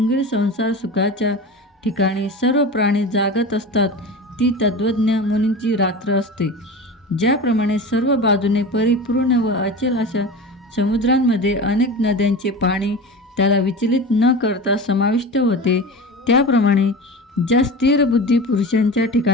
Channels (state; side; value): normal; both; correlation 0.30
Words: संसार सुखाच्या ठिकाणी सर्व प्राणी जागत असतात ती तत्वज्ञ मुनींची रात्र असते. ज्याप्रमाणे सर्व बाजूने परिपूर्ण व अचल अशा समुद्रांमध्ये अनेक नद्यांचे पाणी त्याला विचलित न करता समाविष्ट होते, त्याप्रमाणे ज्या स्थिर बुद्धी पुरुषांच्या